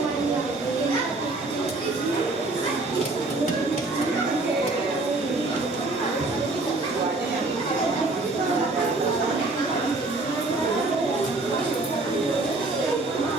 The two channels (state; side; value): quieter; left; 3.2 dB